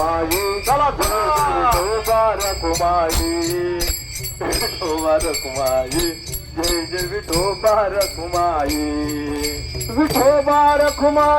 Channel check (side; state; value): both; identical; correlation 1.00